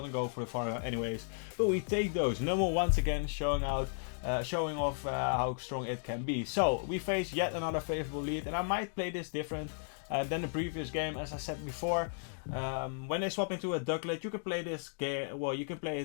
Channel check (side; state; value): right; silent; digital silence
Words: to go for the farm anyways. But we take those. Numel once again showing off how strong it can be. So we face yet another favorable lead, and I might play this different than the previous game. As I said before, when they swap into a Ducklet, you can play this game. Well, you can play